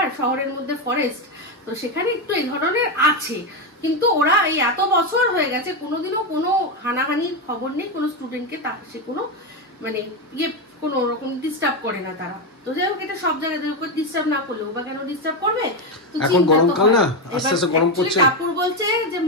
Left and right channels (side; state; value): both; normal; correlation 0.10